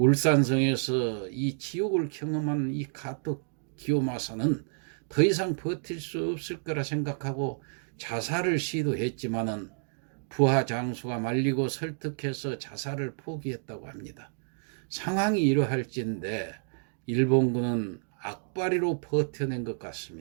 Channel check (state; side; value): silent; left; digital silence